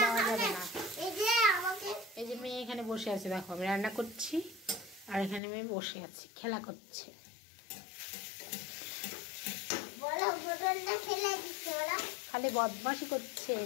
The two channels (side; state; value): right; drops out; at 5.4 s